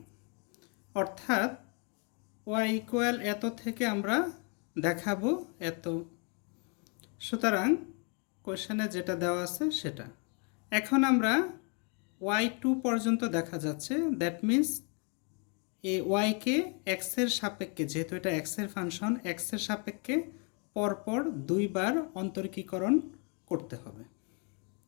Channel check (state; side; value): quieter; right; 36.3 dB